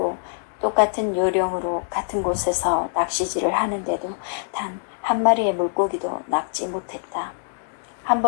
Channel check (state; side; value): silent; right; digital silence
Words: 똑같은 요령으로 같은 곳에서 낚시질을 하는데도 단 한 마리의 물고기도 낚지 못했다. 한